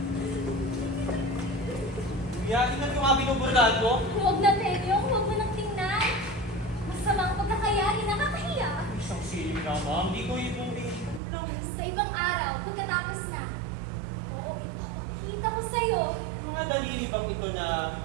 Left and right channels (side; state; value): left; drops out; at 11.2 s